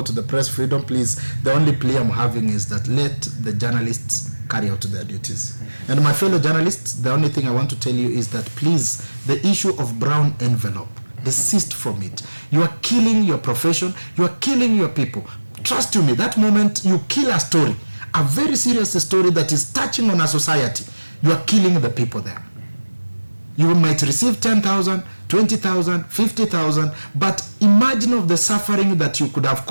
the press freedom, please. The only plea I'm having is that let the journalists carry out their duties. And my fellow journalists, the only thing I want to tell you is that please, the issue of brown envelope, desist from it. You are killing your profession, you are killing your people. Trust me, that moment you kill a story, a very serious story that is touching on a society, you are killing the people there. You might receive 10,000, 20,000, 50,000, but imagine of the suffering that you could have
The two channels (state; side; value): inverted; both; correlation -1.00